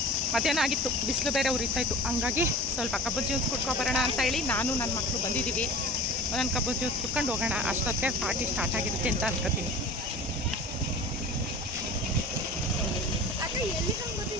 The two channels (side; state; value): both; normal; correlation 0.38